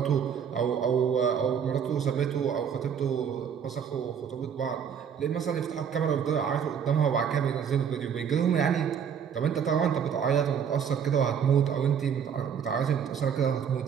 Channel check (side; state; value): left; quieter; 7.7 dB